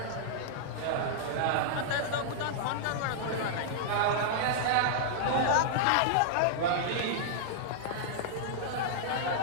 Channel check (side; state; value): both; different; correlation -0.02